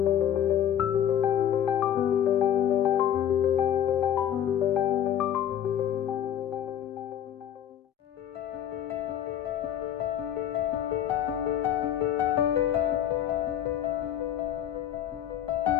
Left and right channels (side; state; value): right; quieter; 10.1 dB